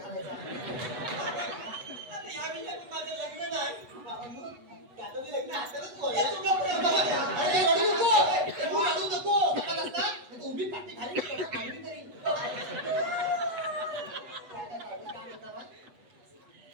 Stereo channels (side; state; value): left; late; 8.1 ms